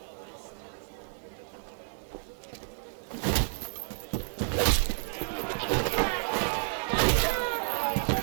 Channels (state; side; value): silent; left; digital silence